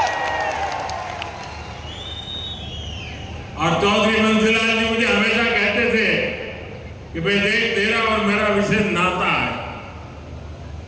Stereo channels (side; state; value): both; identical; correlation 1.00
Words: और चौधरी बंसीलाल जी मुझे हमेशा कहते थे कि भाई देख, तेरा और मेरा विशेष नाता है।